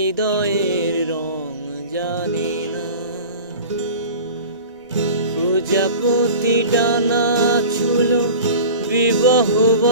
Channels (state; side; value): inverted; both; correlation -0.37